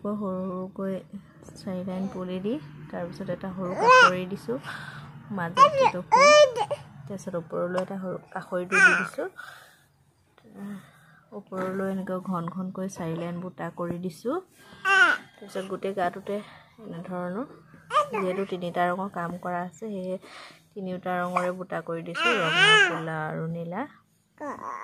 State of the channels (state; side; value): identical; both; correlation 1.00